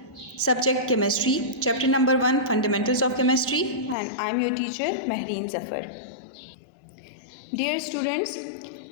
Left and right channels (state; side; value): drops out; right; at 4.0 s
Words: subject chemistry, chapter number 1, fundamentals of chemistry, and I am your teacher Mehreen Zafar. Dear students,